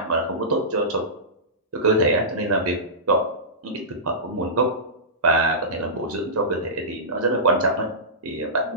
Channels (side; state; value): both; normal; correlation -0.19